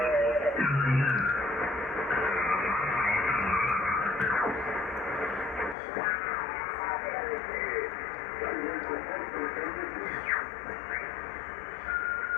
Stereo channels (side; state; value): right; drops out; at 5.8 s